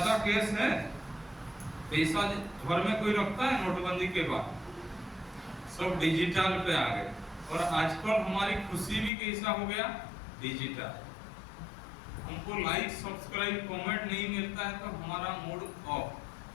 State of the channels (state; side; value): drops out; right; at 9.1 s